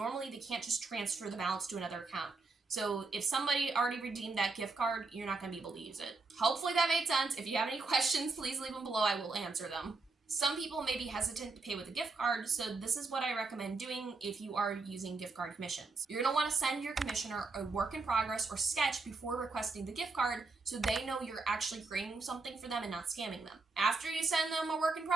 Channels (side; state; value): left; quieter; 3.9 dB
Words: they can't just transfer the balance to another account. So if somebody already redeemed that gift card, you're not going to be able to use it. Hopefully that made sense. If you have any questions, please leave them below. I will answer them. Some people may be hesitant to pay with a gift card, so this is what I recommend doing if you are using gift card commissions. You're going to want to send your commissioner a work in progress or sketch before requesting the gift card so they know you're actually creating something for them and not scamming them. After you send them a work in